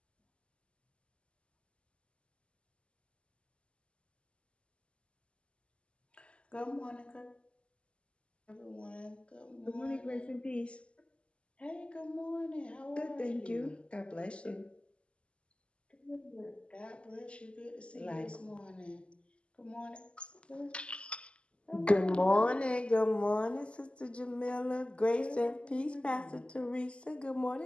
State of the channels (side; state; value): right; late; 0.054 ms